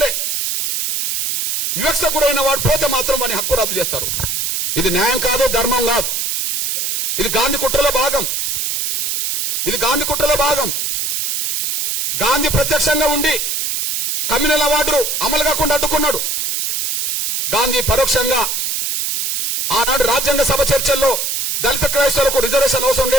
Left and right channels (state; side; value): noise; right; hiss, 1 dB below the sound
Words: వివక్ష గురైన వాడు పోతే మాత్రం వాని హక్కు రద్దు చేస్తారు. ఇది న్యాయం కాదు, ధర్మం కాదు. ఇది గాంధీ కుట్రలో భాగం. ఇది గాంధీ కుట్రలో భాగం. గాంధీ ప్రత్యక్షంగా ఉండి కమ్యూనల్ అవార్డులు అమలు కాకుండా అడ్డుకున్నాడు. గాంధీ పరోక్షంగా ఆనాడు రాజ్యాంగ సభ చర్చల్లో దళిత క్రైస్తవులకు రిజర్వేషన్ అవసరం